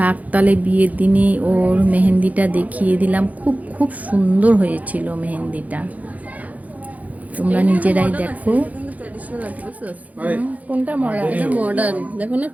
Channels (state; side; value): late; left; 0.075 ms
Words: তালে বিয়ের দিনে ওর মেহেন্দিটা দেখিয়ে দিলাম। খুব খুব সুন্দর হয়েছিল মেহেন্দিটা, তোমরা নিজেরাই দেখো। কোনটা মডার্ন দেখো না,